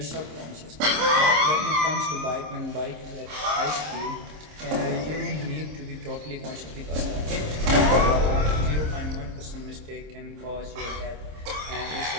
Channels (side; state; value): left; late; 26 ms